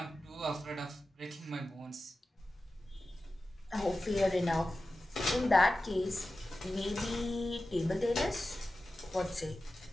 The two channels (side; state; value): both; normal; correlation 0.94